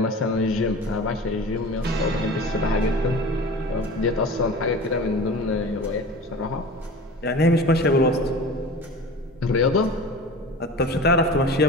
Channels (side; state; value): both; normal; correlation 0.36